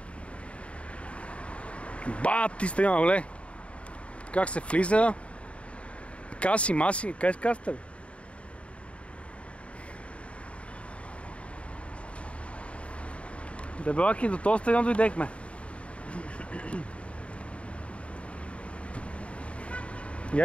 Ти стадиона, гледай. Как се влиза. Каси, маси. Къде с касата, бе? Дебелаки, до този стадион дойдехме.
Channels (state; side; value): late; right; 0.062 ms